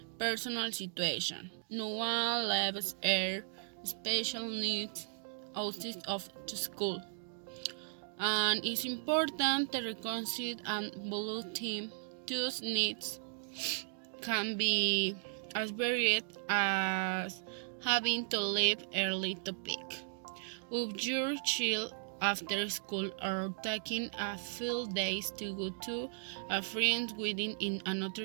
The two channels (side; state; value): left; silent; digital silence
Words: personal situation. No one lives air special needs outside of the school. And it's important to reconcile and value team. Those needs can be as varied as having to leave early to pick up your child after school or taking a few days to go to a friend's wedding in